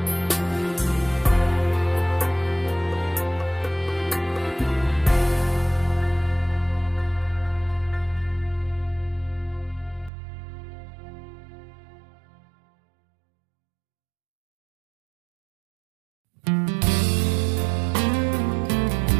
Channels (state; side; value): drops out; left; at 10.1 s